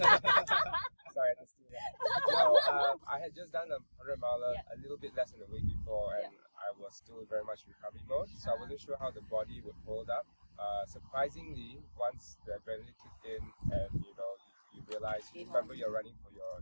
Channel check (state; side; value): inverted; both; correlation -1.00